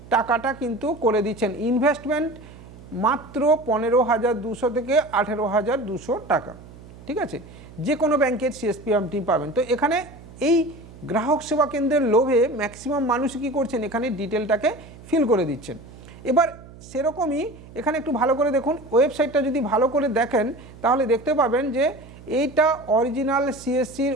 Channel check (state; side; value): noise; right; hum, 19 dB below the sound